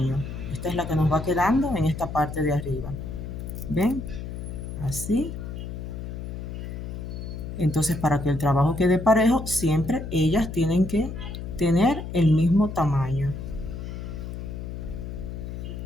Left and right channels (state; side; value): noise; left; hum, 7 dB below the sound